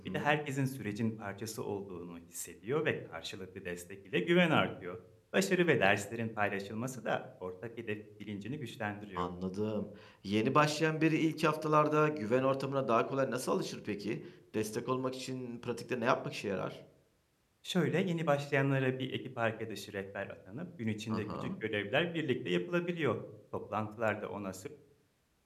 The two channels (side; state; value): both; identical; correlation 1.00